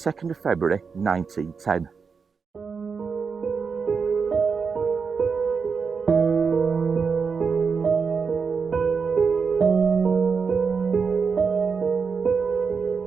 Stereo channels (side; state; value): left; quieter; 5.5 dB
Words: of February 1910.